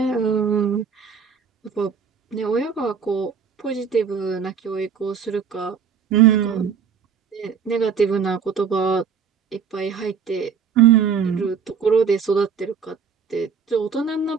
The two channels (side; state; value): left; quieter; 6.5 dB